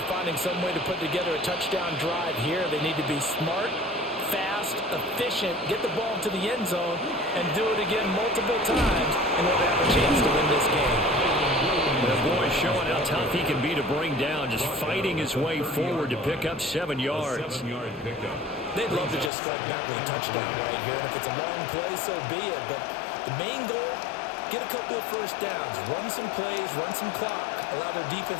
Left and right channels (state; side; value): drops out; right; at 19.3 s